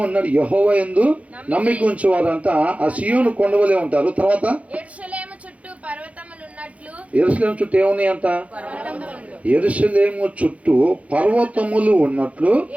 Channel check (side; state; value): left; late; 0.066 ms